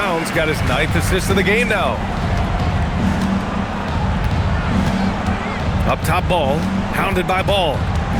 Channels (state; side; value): identical; both; correlation 1.00